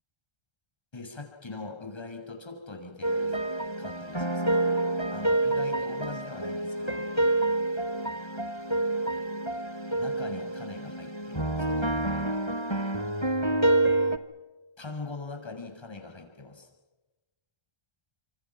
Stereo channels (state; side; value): late; right; 1.3 ms